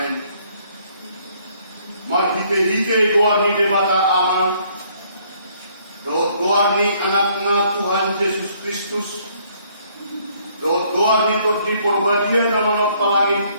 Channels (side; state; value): both; inverted; correlation -0.65